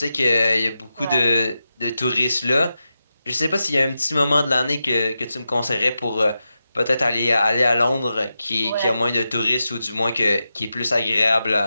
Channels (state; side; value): inverted; both; correlation -0.89